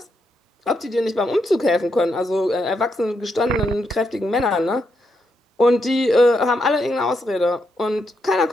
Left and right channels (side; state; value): both; normal; correlation 0.81